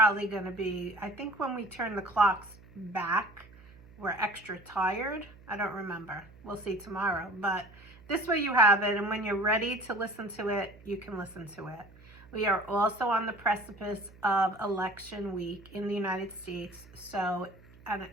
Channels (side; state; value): right; noise; hum, 23 dB below the sound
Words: going to be, I think when we turn the clocks back, we're extra tired. I don't remember. We'll see tomorrow. But this way you have it, and when you're ready to listen to it, you can listen to it. We are also on the precipice of election week in the United States. So